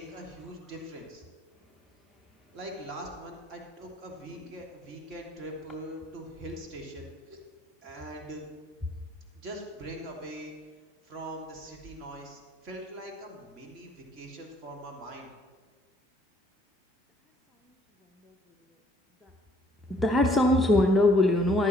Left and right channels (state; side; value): normal; both; correlation 0.63